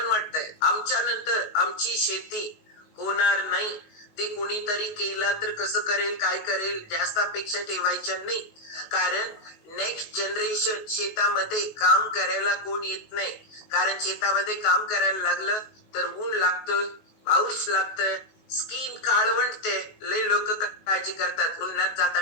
वाटतंय आमच्या नंतर आमची शेती होणार नाही. ते कुणीतरी केला तर कसं करेल, काय करेल, जास्त अपेक्षा ठेवायच्या नाही. कारण नेक्स्ट जनरेशन शेतामध्ये काम करायला कोण येत नाही. कारण शेतामध्ये काम करायला लागलं तर ऊन लागतं, पाऊस लागतं, स्किन काळवंटते, लय लोक काळजी करतात, उन्हात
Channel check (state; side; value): late; right; 19 ms